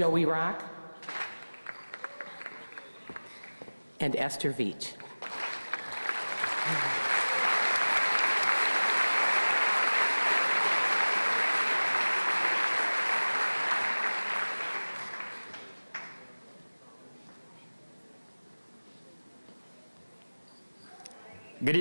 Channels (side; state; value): both; inverted; correlation -1.00